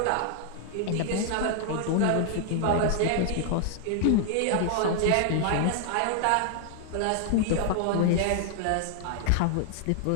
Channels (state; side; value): different; both; correlation 0.00